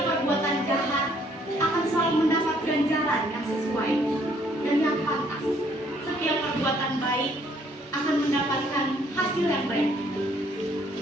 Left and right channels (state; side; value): normal; both; correlation 0.65